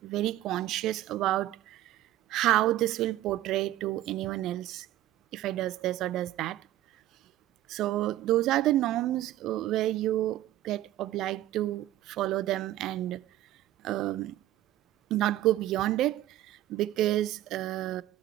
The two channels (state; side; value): quieter; left; 14.2 dB